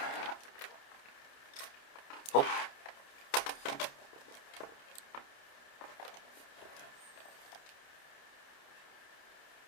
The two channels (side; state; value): right; late; 29 ms